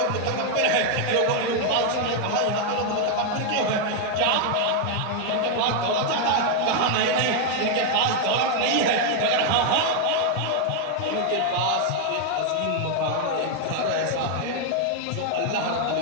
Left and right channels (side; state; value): both; different; correlation 0.01